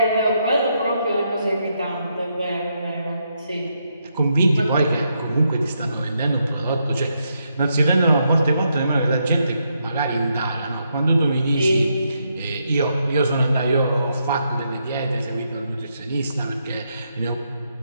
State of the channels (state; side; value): inverted; both; correlation -0.79